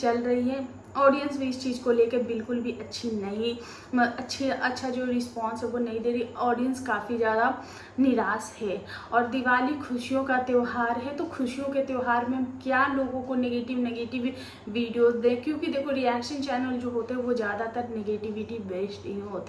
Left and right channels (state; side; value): identical; both; correlation 1.00